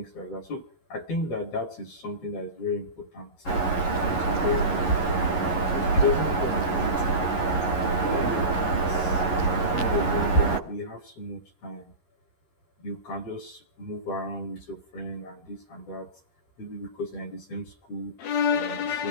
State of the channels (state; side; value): late; right; 11 ms